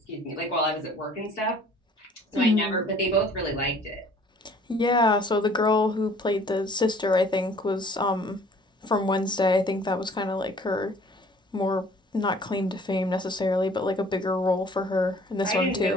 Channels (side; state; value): both; normal; correlation 0.53